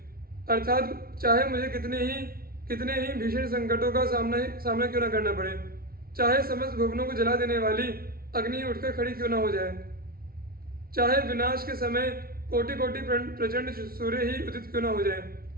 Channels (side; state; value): left; late; 0.44 ms